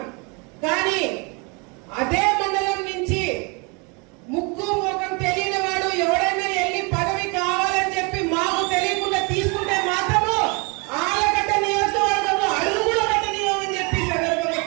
కానీ అదే మండలం నుంచి ముక్కు ముఖం తెలియని వాడు ఎవరైనా వెళ్ళి పదవి కావాలని చెప్పి మాకు తెలియకుండా తీసుకుంటే మాత్రము ఆలగడ్డ నియోజకవర్గంలో అడుగు కూడా పెట్టనివ్వమని చెప్పి సందర్భంగా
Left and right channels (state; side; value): quieter; left; 31.3 dB